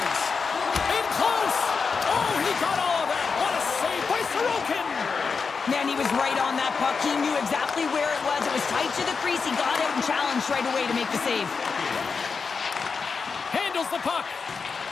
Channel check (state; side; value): quieter; right; 5.2 dB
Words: In close. Oh, he got all of that. What a save by Sorokin. Man, he was right on that puck. He knew exactly where it was. It was tight to the crease. He got out and challenged right away to make the save. Handles the puck.